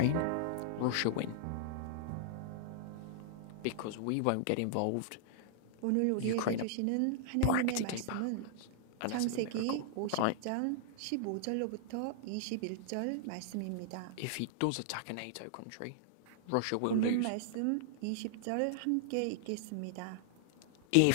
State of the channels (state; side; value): different; both; correlation -0.01